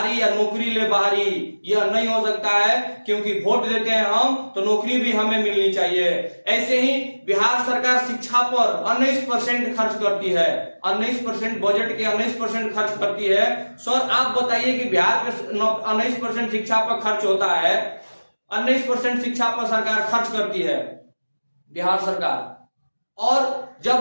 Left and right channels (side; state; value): both; inverted; correlation -1.00